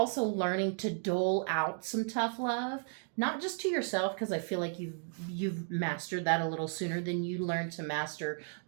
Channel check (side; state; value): left; silent; 55 dB below the other